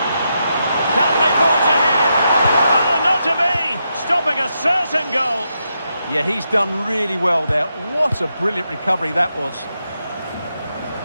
Can they forge ahead? Oh, not to be! Stopping a certain goal. Yeah, he's done really well there. What a brilliant recovery that was.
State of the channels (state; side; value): inverted; both; correlation -0.83